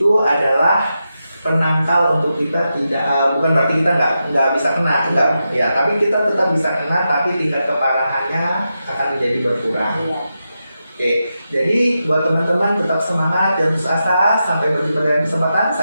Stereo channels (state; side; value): inverted; both; correlation -0.88